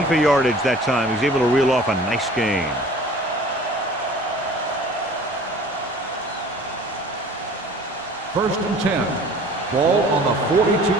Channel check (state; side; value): normal; both; correlation 0.47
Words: for yardage that time. He's able to reel off a nice gain. First and 10. Ball on the